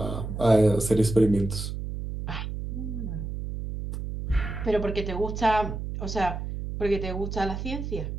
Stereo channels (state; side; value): noise; right; hum, 5 dB below the sound